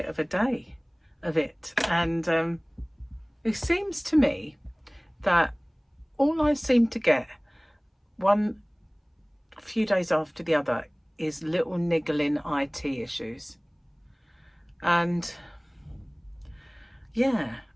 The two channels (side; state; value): both; identical; correlation 1.00